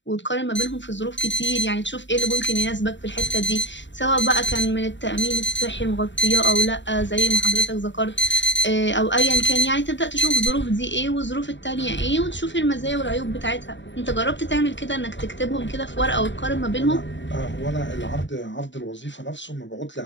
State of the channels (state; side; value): late; right; 0.53 ms